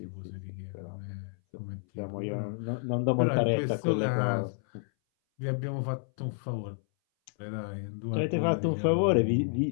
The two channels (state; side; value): silent; right; 58 dB below the other